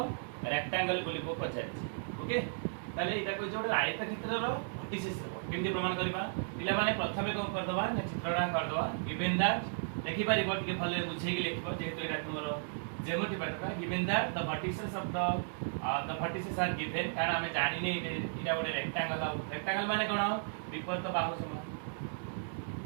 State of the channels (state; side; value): silent; left; digital silence